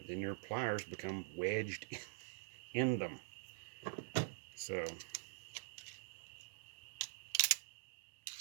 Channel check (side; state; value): left; silent; digital silence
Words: then your pliers become wedged in them. So